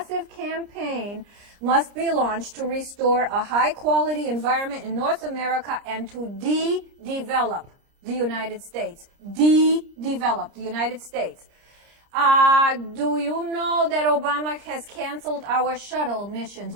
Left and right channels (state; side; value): late; left; 30 ms